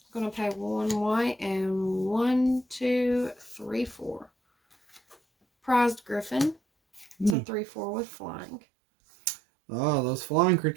Gonna pay 1 white and 1, 2, 3, 4. prized griffin. It's a 3/4 with flying. Oh, those flying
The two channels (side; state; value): left; drops out; at 7.4 s